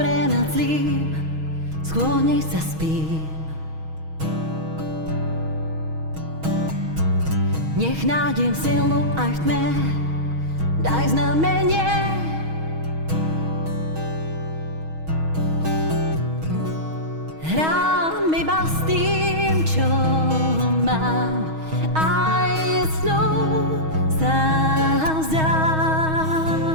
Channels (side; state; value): left; late; 6.3 ms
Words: nad zlým, sklonej sa spím. Nech nájdem silu aj v tme, daj znamenie. Hrám iba s tým, čo mám, aj snou sa vzdám.